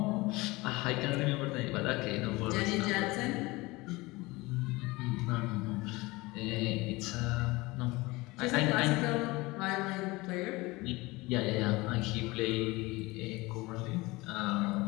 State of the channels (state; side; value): quieter; right; 22.2 dB